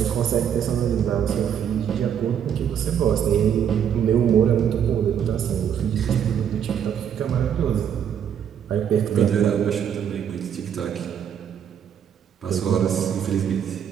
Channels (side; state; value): left; quieter; 8.7 dB